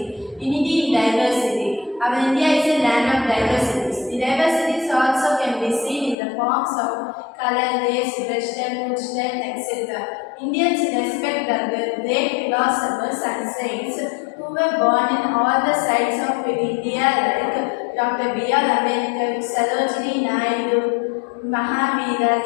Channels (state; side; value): drops out; right; at 6.2 s